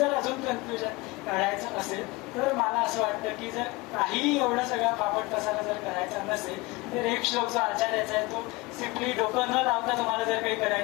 अजून कन्क्ल्युजन काढायचं असेल तर मला असं वाटतं की जर काही एवढं सगळा पापट पसारा जर करायचा नसेल तर एक श्लोक जो आचार्याचा आहे तो सिम्पली डोकं न लावता तुम्हाला जर काही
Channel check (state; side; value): quieter; right; 22.7 dB